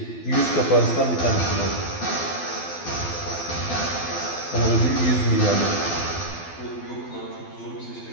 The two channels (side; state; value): right; late; 12 ms